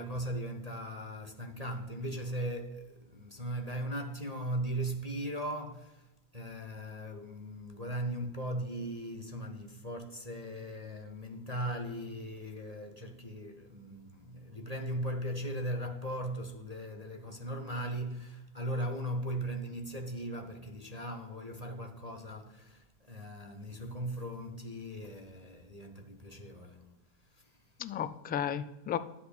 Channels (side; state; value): left; late; 1.8 ms